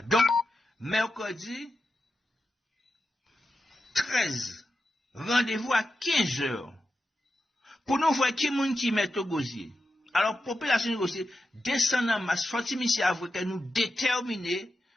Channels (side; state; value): both; normal; correlation 0.90